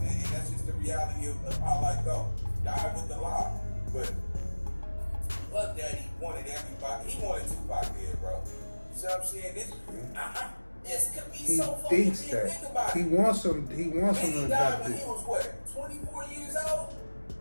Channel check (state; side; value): inverted; both; correlation -1.00